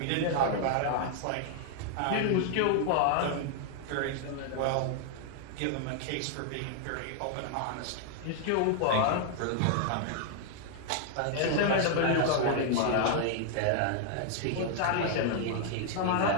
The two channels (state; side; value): different; both; correlation 0.00